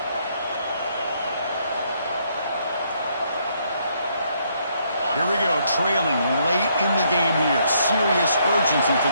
Here we go, trailing late in the game here. Serious urgency for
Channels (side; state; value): both; inverted; correlation -0.71